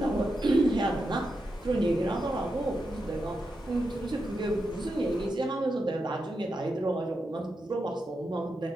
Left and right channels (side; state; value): both; normal; correlation 0.87